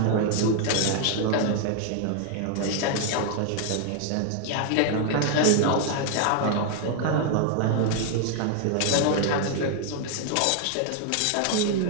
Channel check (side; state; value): both; different; correlation 0.00